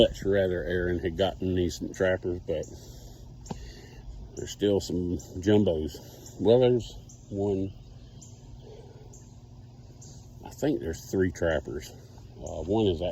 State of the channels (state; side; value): identical; both; correlation 1.00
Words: rather Aaron had gotten these trappers, but there's still some jumbos. Well, there's one, I think there's 3 trappers. One is